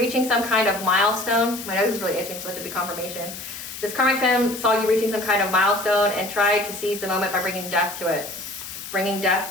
some kind of milestone. My nose is really itching, so let it be confirmation. This karmic femme saw you reaching some kind of milestone and tried to seize the moment by bringing death to it. Bringing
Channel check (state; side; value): noise; left; hiss, 10 dB below the sound